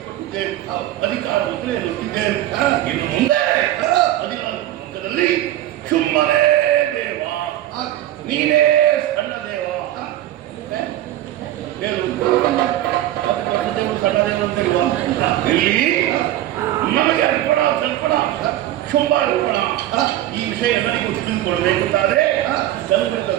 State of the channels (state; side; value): quieter; left; 13.8 dB